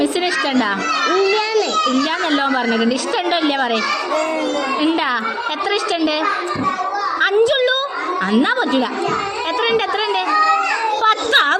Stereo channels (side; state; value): both; identical; correlation 1.00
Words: ഇഷ്ടമുണ്ടോ? ഇല്ലാന്നല്ലോ പറഞ്ഞിട്ടുണ്ട്. ഇഷ്ടമുണ്ടോ ഇല്ല പറയും. ഉണ്ടാ? എത്ര ഇഷ്ടമുണ്ട്? 5 ഉള്ളൂ? എന്നാ പറ്റൂല. എത്ര ഉണ്ട്? 10.